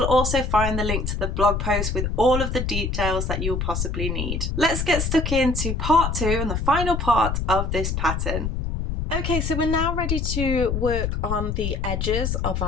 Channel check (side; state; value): left; noise; rumble, 1 dB below the sound